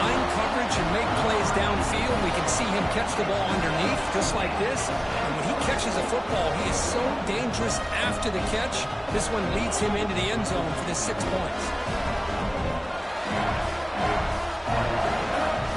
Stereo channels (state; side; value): identical; both; correlation 1.00